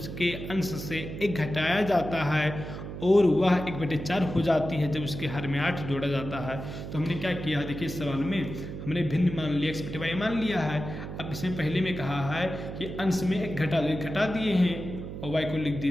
अंश से 1 घटाया जाता है और वह 1/4 हो जाती है जब उसके हर में 8 जोड़ा जाता है। तो हमने क्या किया, देखिए इस सवाल में हमने भिन्न मान लिया, x/y मान लिया है। अब इसमें पहले में कहा है कि अंश में 1 घटा दो, 1 घटा दिए हैं और y को लिख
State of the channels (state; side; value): noise; right; hum, 8 dB below the sound